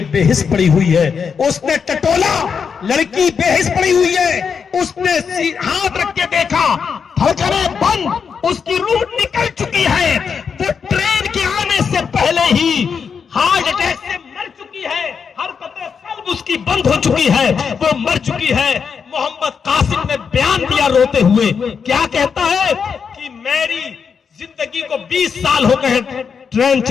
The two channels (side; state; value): right; quieter; 6.3 dB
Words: بے حس پڑی ہوئی ہے. اس نے ٹٹولا، لڑکی بے حس پڑی ہوئی ہے. اس نے ہاتھ رکھ کے دیکھا، دھڑکنیں بند، اس کی روح نکل چکی ہے. وہ ٹرین کے آنے سے پہلے ہی ہارٹ اٹیک سے مر چکی ہے، حرکتیں قلب اس کی بند ہو چکی ہے، وہ مر چکی ہے. محمد قاسم نے بیان دیا روتے ہوئے، کیا کہتا ہے کہ میری زندگی کو 20 سال ہو گئے ٹرین